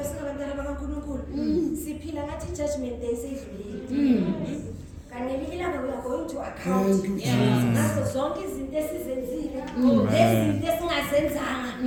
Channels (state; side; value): identical; both; correlation 1.00